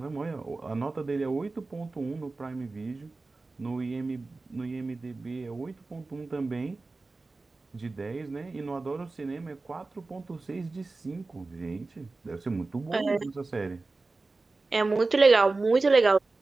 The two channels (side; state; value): left; quieter; 3.5 dB